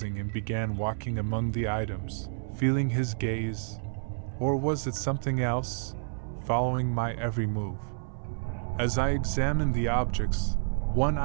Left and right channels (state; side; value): silent; left; 58 dB below the other